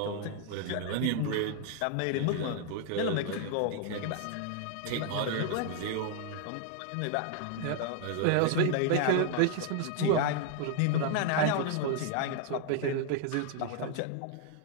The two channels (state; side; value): different; both; correlation 0.00